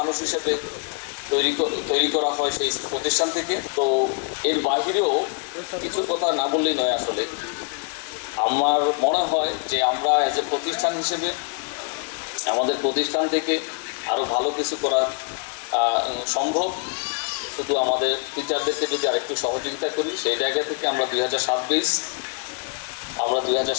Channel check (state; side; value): quieter; right; 38.7 dB